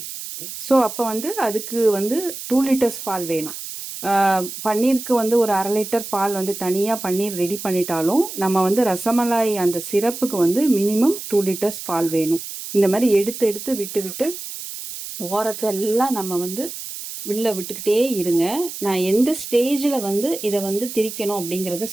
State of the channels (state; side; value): noise; right; hiss, 9 dB below the sound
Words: ஸோ அப்போ வந்து அதுக்கு வந்து 2 லிட்டர்ஸ் பால் வேணும். பன்னீருக்கு வந்து ஒரு 1/2 லிட்டர் பால் வந்து தனியாக பன்னீர் ரெடி பண்ணிட்டாலும் நம்ம வந்து ரசமலாய் அந்த சிரப்புக்கு வந்து மினிமம் 2 லிட்டர்ஸ் பால் வேணும். இந்த மாதிரி எடுத்து எடுத்து விட்டு விட்டு ஓரத்தெல்லாம் நம்ம வந்து உள்ள விட்டுக்கிட்டே இருங்க. நான் எந்த ஸ்டேஜில் வந்து இதை வந்து திரிக்கணும் அப்படிங்கிறத